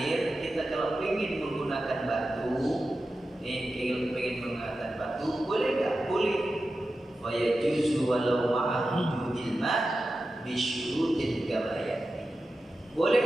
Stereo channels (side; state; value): both; normal; correlation 0.92